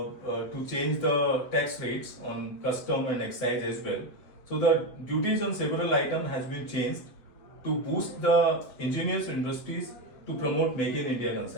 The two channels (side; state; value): right; late; 7.8 ms